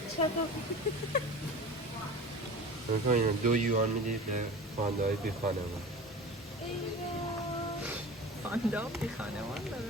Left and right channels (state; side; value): normal; both; correlation 0.36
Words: چطور؟ میکنیم 2 یوان میدید به پاندای بی خانمان پاندا بی خانمان